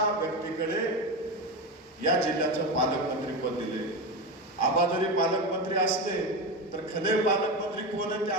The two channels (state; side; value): normal; both; correlation 0.18